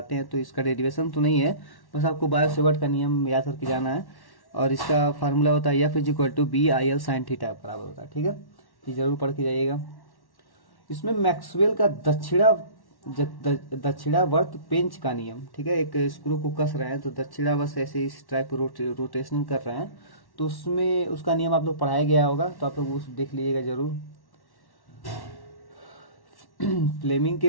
हैं तो इसका डेरिवेशन तो नहीं है, बस आपको बायो-सेवर्ट का नियम याद करके जाना है। और इसका फार्मूला होता है F is equal to B I L sine theta बराबर होता है, ठीक है, ये जरूर पढ़ के जाइएगा। इसमें मैक्सवेल का दक्षिणावर्त पेंच का नियम, ठीक है, एक स्क्रू को कस रहे हैं तो दक्षिणावर्त ऐसे इस टाइप रोटेशन कर रहे हैं, तो उसमें उसका नियम आप लोग पढ़ाया गया होगा, तो आप लोग उस देख लीजिएगा जरूर। फ्लेमिंग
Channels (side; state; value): right; late; 1.1 ms